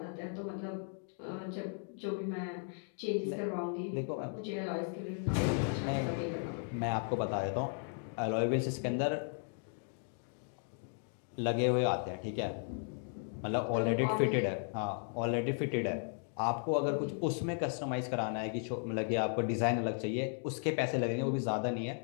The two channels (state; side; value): silent; right; 54 dB below the other